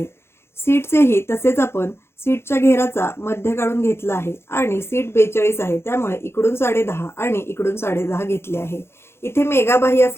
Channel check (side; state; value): right; late; 0.12 ms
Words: सीटचेही तसेच आपण सीटच्या घेराचा मध्य काढून घेतला आहे आणि सीट 42 आहे, त्यामुळे इकडून 10.5 आणि इकडून 10.5 घेतले आहे। इथे मेगा बाही